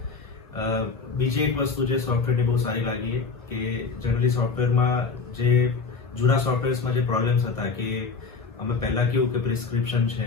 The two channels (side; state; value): right; quieter; 4.7 dB